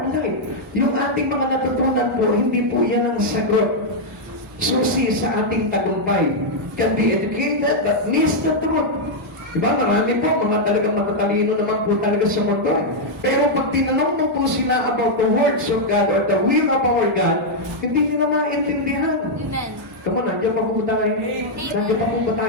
life. Yung ating mga natutunan po, hindi po yan ang sagot. Susi sa ating tagumpay. Can be educated but miss the truth. Diba? Marami po, mga talagang matatalino naman po talaga sa mundo. Pero pag tinanong mo po sila about the words of God or the will of our God, hindi nila maintindihan. Amen. Come on, nandiyan pa po tayo. Nandiyan pa po ba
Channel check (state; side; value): normal; both; correlation -0.03